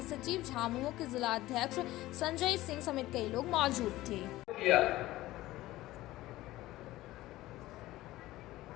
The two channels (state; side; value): quieter; right; 16.9 dB